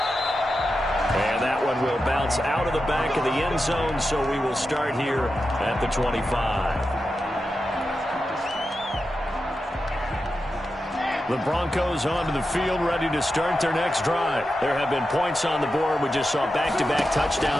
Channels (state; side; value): normal; both; correlation 0.90